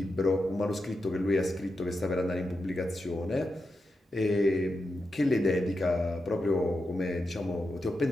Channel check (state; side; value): normal; both; correlation 0.88